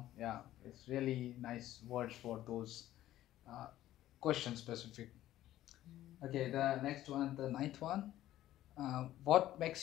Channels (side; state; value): right; quieter; 13.8 dB